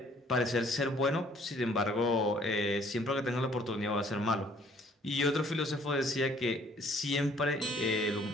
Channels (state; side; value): normal; both; correlation 0.60